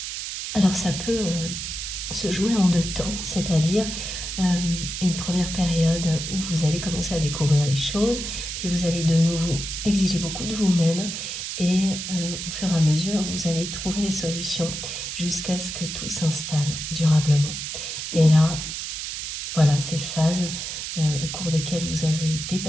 Alors ça peut se jouer en 2 temps, c'est-à-dire une première période où vous allez commencer à découvrir les choses, puis vous allez de nouveau exiger beaucoup de vous-même, et au fur et à mesure, vous allez trouver les solutions jusqu'à ce que tout s'installe durablement. Et là, voilà, ces phases au cours desquelles vous avez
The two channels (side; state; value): right; noise; hiss, 5 dB below the sound